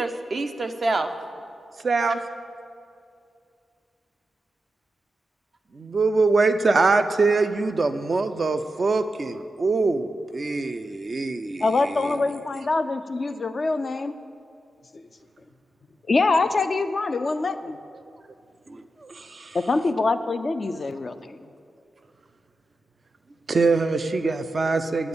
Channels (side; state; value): both; normal; correlation 0.89